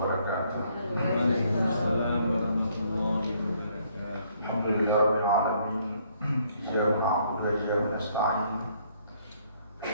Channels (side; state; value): both; inverted; correlation -0.66